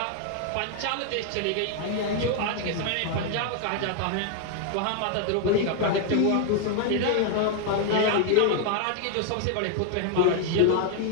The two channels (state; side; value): different; both; correlation 0.00